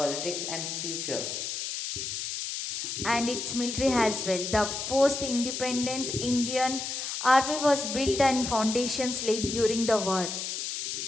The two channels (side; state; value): left; noise; hiss, 4 dB below the sound